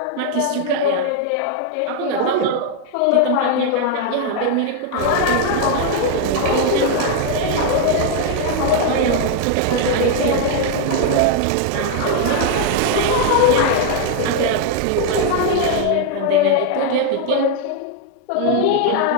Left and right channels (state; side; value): different; both; correlation 0.00